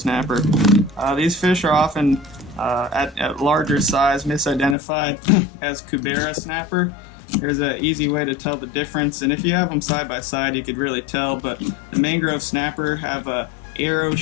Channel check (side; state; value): right; drops out; at 4.8 s